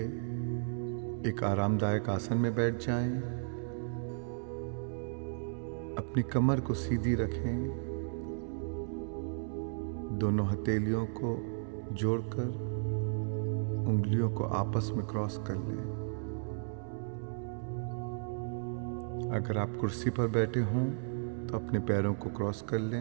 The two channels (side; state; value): left; silent; digital silence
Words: एक आरामदायक आसन में बैठ जाएं। अपनी कमर को सीधी रखें। दोनों हथेलियों को जोड़कर उंगलियों को आपस में क्रॉस कर लें। अगर आप कुर्सी पर बैठे हों तो अपने पैरों को क्रॉस कर